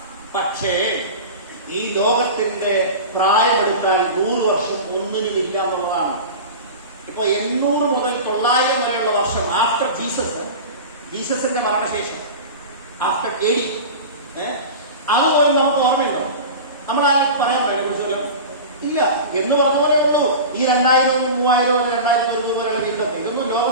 പക്ഷേ ഈ ലോകത്തിന്റെ പ്രായമെടുത്താൽ 100 വർഷം ഒന്നിനും ഇല്ല എന്നുള്ളതാണ്. ഇപ്പൊ 800 മുതൽ 900 വരെയുള്ള വർഷം ആഫ്റ്റർ ജീസസിന്റെ മരണശേഷം, ആഫ്റ്റർ AD, അതുപോലെ നമുക്ക് ഓർമ്മയുണ്ടോ? നമ്മളാരും പറയാൻ പറ്റില്ല കുറിച്ചല്ലോ ഇല്ല എന്ന് പറഞ്ഞ പോലെ ഉള്ളൂ. ഈ 2000, 3000, 2000 വരെയുള്ള ജീവിതം ഇതൊന്നും ലോകം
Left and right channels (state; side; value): inverted; both; correlation -0.30